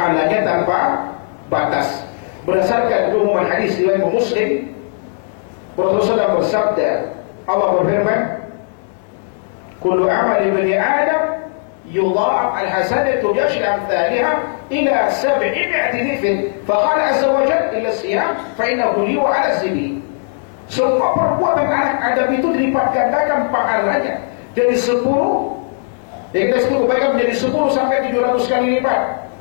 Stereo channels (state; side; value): silent; right; digital silence